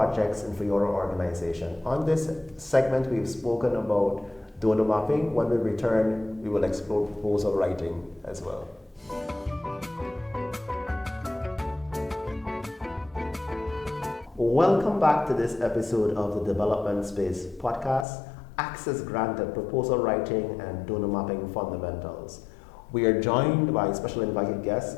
and for your organization. On this segment, we've spoken about donor mapping. When we return, we will explore proposal writing as well. Welcome back to this episode of the Development Space podcast, Access Granted, Proposal Writing and Donor Mapping Fundamentals. We are joined by special invited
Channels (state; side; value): drops out; right; at 18.1 s